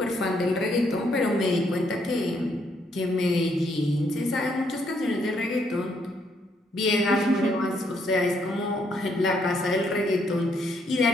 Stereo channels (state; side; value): normal; both; correlation 0.72